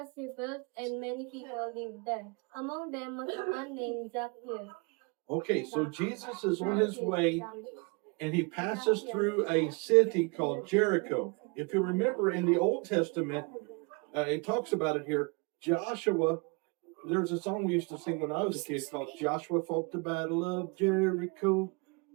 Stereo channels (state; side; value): quieter; left; 31.2 dB